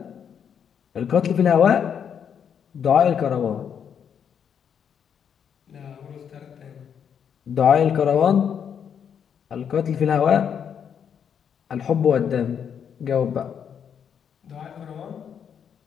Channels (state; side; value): quieter; right; 7.9 dB